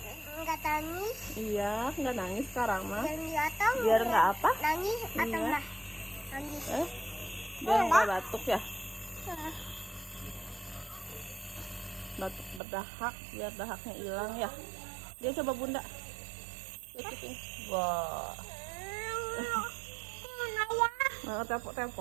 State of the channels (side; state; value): left; drops out; at 12.6 s